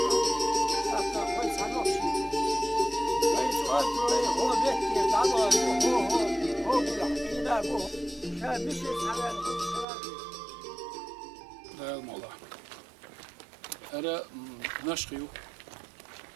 الموضوع أنا نشخيو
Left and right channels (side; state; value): left; drops out; at 9.9 s